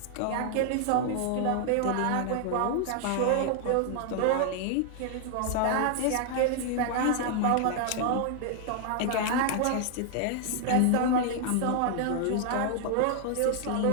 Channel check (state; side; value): different; both; correlation 0.00